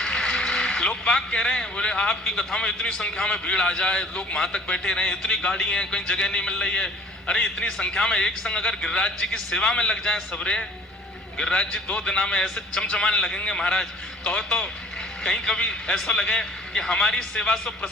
लोग बाग कह रहे हैं, बोले आपकी कथा में इतनी संख्या में भीड़ आ जाए, लोग वहां तक बैठे रहे, इतनी गाड़ी है, कहीं जगह नहीं मिल रही है। अरे इतनी संख्या में एक संग अगर गिरिराज जी की सेवा में लग जाए सबरे, गिरिराज जी 2 दिना में ऐसे चमचमाने लगेंगे महाराज। कहो तो कहीं कभी ऐसा लगे कि हमारी सेवा से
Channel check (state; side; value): normal; both; correlation 0.50